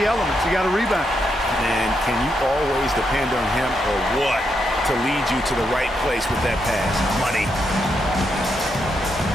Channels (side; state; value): both; normal; correlation 0.81